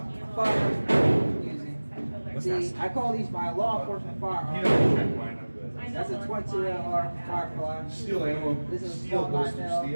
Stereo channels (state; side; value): inverted; both; correlation -1.00